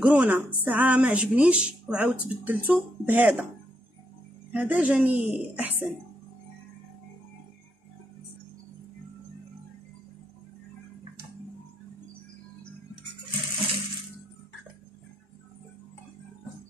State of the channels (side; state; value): both; normal; correlation 0.79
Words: ساعه ما عجبنيش وعاودت بدلته بهذا، هذا جاني احسن.